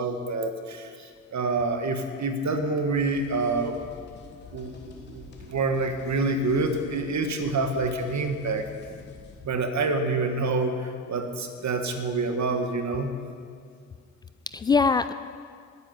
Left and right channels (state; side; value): normal; both; correlation 0.10